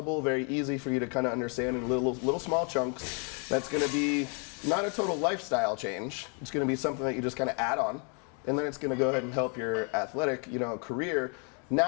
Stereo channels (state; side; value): quieter; right; 37.8 dB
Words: very easy for you to kind of understand in little small chunks. That's going to be not a total lifestyle change. It's going to be something that you just kind of add on, and then it's going to go ahead and help your athletic, career.